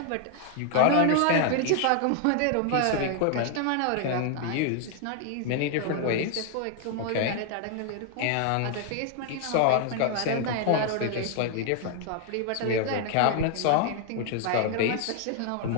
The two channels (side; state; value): both; different; correlation 0.00